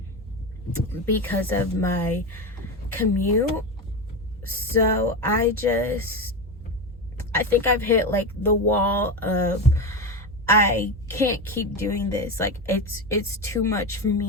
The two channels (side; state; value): both; normal; correlation 0.17